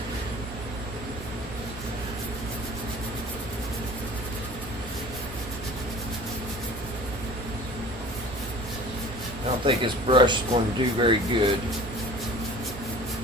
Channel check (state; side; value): noise; right; hum, 11 dB below the sound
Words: I don't think this brush is going to do very good.